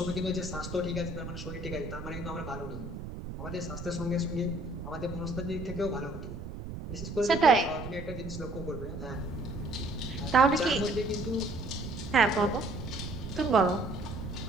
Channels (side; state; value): right; noise; rumble, 8 dB below the sound